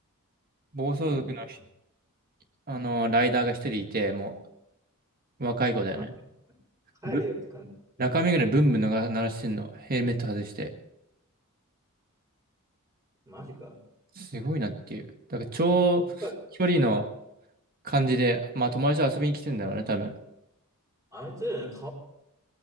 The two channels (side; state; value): both; normal; correlation 0.32